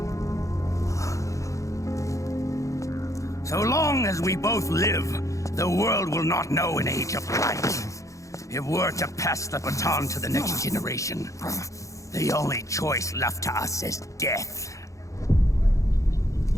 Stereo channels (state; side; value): late; right; 0.15 ms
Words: So long as we both live, the world will not know an age of light. If we're to pass the baton to the next generation, the only choice left to us is death.